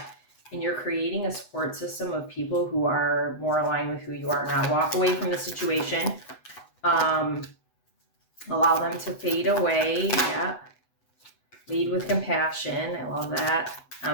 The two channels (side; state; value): right; late; 8.0 ms